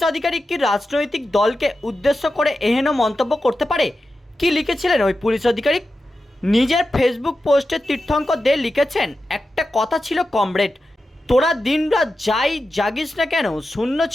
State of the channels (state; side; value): normal; both; correlation 0.91